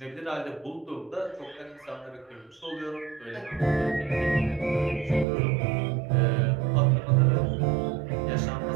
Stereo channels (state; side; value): drops out; left; at 5.2 s